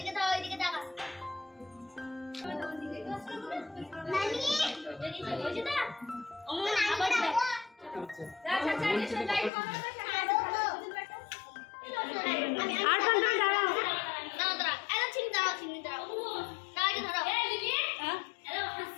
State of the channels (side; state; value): right; drops out; at 9.5 s